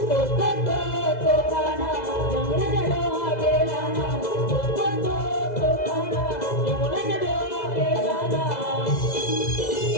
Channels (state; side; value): late; right; 2.0 ms